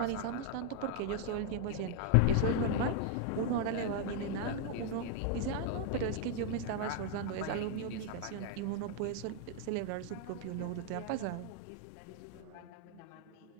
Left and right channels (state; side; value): different; both; correlation 0.00